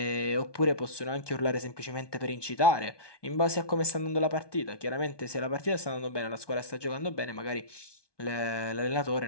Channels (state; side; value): late; right; 1.2 ms